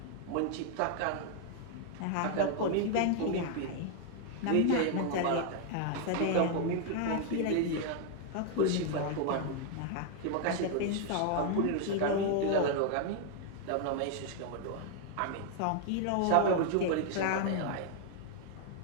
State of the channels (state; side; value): different; both; correlation 0.00